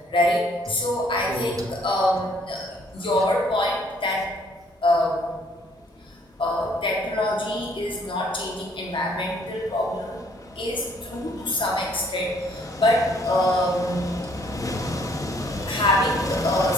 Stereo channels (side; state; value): both; normal; correlation 0.63